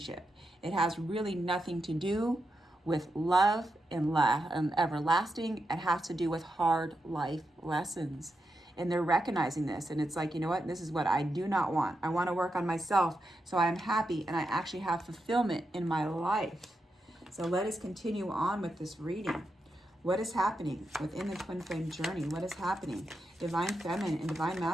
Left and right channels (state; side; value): normal; both; correlation 0.86